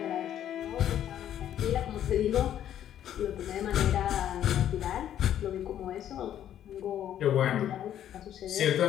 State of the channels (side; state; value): right; quieter; 10.8 dB